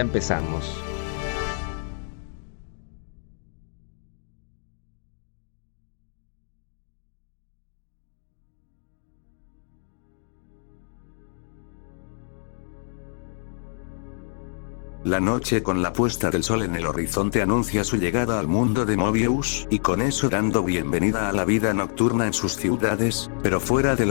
La noche con la puesta del sol en el horizonte anuncia su llegada al mundo de Mobius, y con eso dando bienvenida a la vida nocturna en sus ciudades, pero fuera de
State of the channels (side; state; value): right; silent; 60 dB below the other